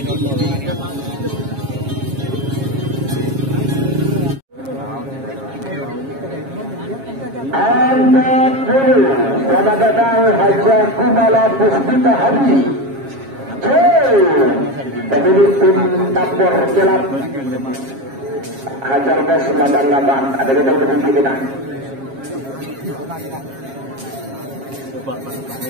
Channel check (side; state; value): left; late; 7.4 ms